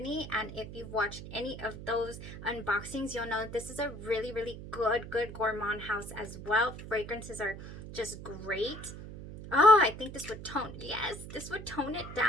and if you've watched any of those unboxings, you'll know this is a really good gourmand house as well. Fragrances are just great. Oh, I think this would tone, yes, this would tone it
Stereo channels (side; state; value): right; noise; hum, 11 dB below the sound